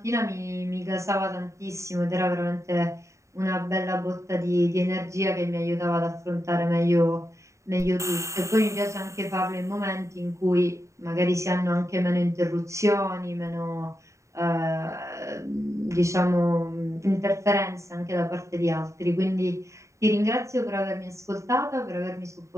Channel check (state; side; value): late; left; 0.14 ms